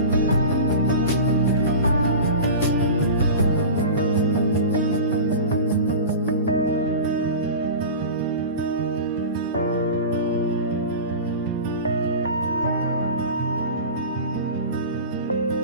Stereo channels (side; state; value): both; inverted; correlation -0.32